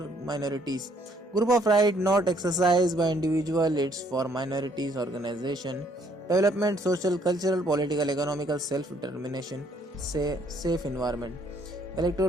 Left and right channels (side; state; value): both; normal; correlation 0.65